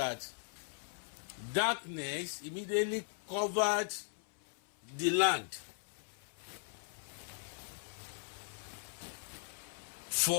darkness immediately covered the land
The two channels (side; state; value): right; silent; 52 dB below the other